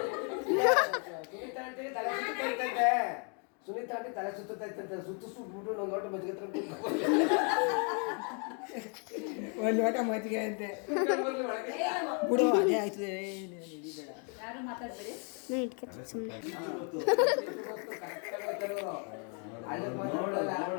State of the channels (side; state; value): right; quieter; 39.2 dB